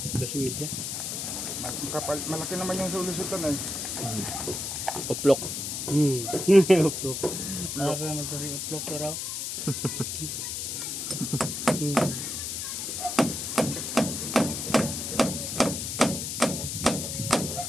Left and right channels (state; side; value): noise; left; hiss, 4 dB below the sound